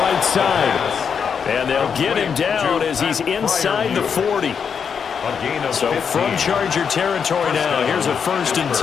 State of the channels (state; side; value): quieter; right; 6.8 dB